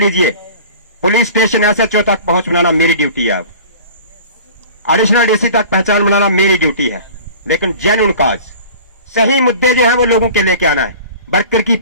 पुलिस स्टेशन SHO तक पहुंच बनाना मेरी ड्यूटी है, एडिशनल DC तक पहचान बनाना मेरी ड्यूटी है। लेकिन जेन्युइन काज, सही मुद्दे जो है वो लोगों के लेके आना है। वर्कर की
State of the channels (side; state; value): both; inverted; correlation -0.42